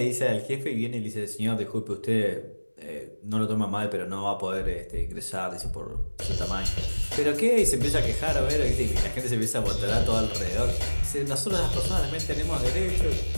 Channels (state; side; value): inverted; both; correlation -1.00